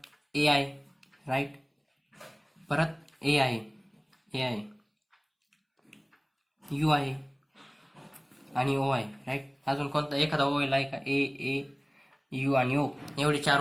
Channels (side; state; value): both; identical; correlation 1.00